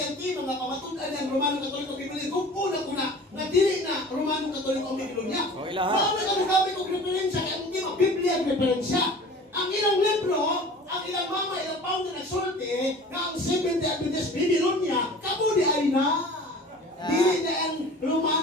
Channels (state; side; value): normal; both; correlation 0.42